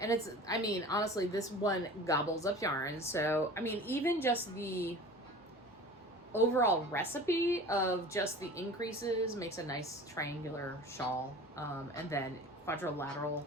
I mean, honestly, this one gobbles up yarn. So, I mean, even just the overall recipe of just the increases makes a nice triangular shawl. And then quadrilateral,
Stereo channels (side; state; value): both; normal; correlation 0.39